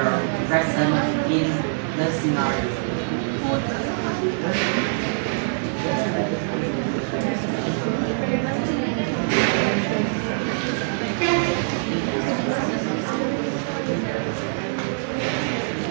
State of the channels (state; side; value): silent; left; 63 dB below the other